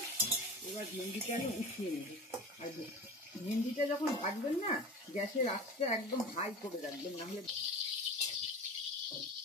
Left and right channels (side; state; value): both; normal; correlation 0.33